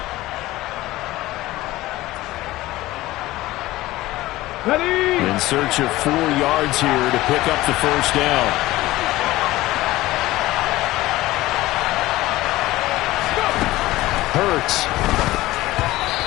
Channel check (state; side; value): quieter; right; 17.5 dB